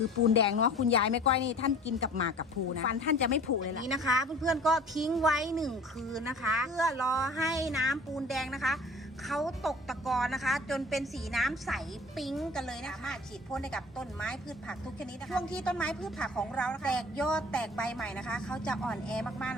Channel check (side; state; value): both; normal; correlation 0.45